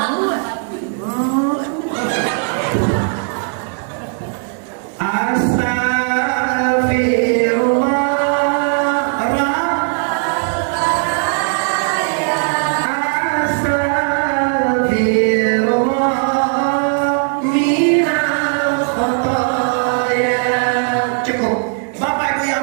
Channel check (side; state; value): left; silent; 57 dB below the other